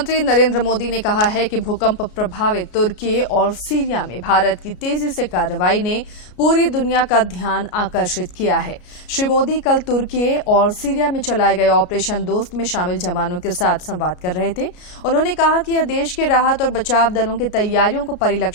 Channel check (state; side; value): late; right; 33 ms